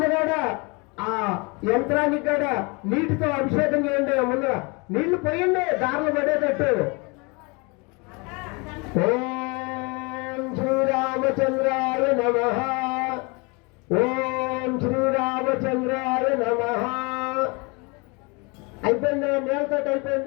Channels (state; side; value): quieter; right; 29.2 dB